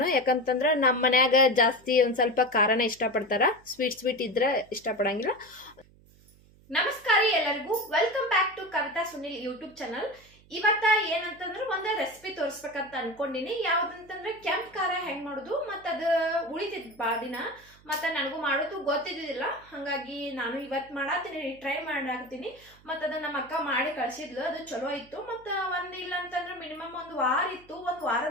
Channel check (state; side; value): noise; right; hum, 27 dB below the sound